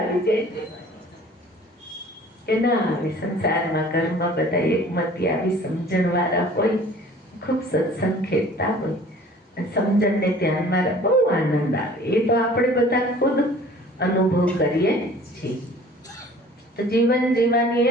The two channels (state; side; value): normal; both; correlation 0.49